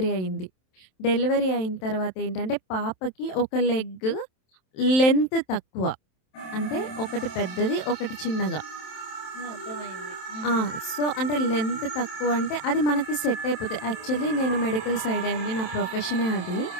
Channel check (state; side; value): late; right; 27 ms